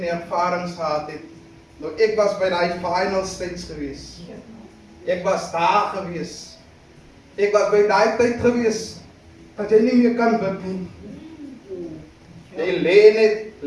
ervarings gehad het. Nou ek was by daai final stage gewees. Ek was daar gewees. Ek was by daai tyd gewees dat jy nie meer kan bid nie. Jy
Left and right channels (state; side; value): identical; both; correlation 1.00